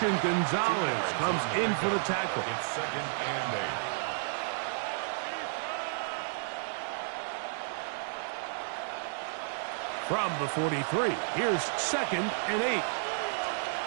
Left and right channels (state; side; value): silent; left; digital silence